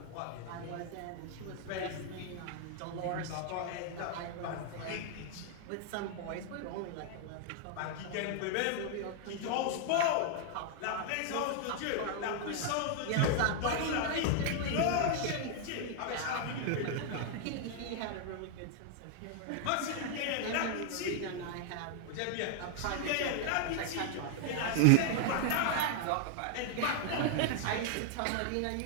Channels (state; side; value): different; both; correlation 0.00